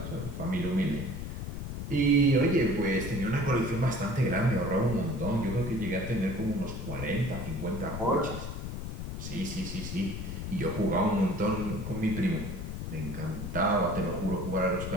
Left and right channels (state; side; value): noise; left; rumble, 6 dB below the sound